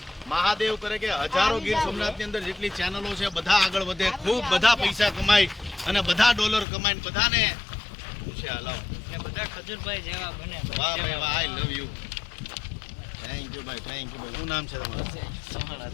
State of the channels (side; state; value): right; drops out; at 6.7 s